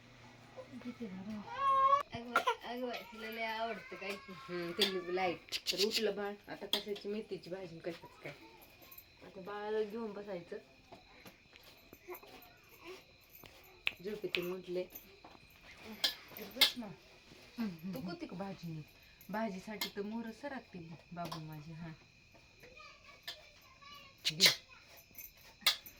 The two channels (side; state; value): both; identical; correlation 1.00